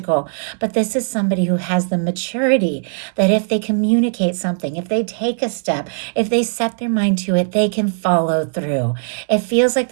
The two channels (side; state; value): left; silent; digital silence